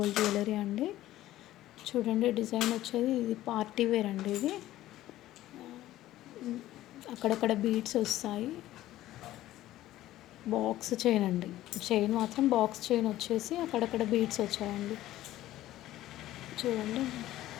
జ్యువెలరీ అండి. చూడండి, డిజైన్ వచ్చేది ఇది పార్టీ వేర్ అండి. ఇది అక్కడక్కడ బీడ్స్ వస్తాయి. బాక్స్ చైన్ అండి. చైన్ మాత్రం బాక్స్ చైన్ వచ్చేసి అక్కడక్కడ బీడ్స్ వచ్చాయండి. చూడండి,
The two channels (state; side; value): quieter; right; 14.7 dB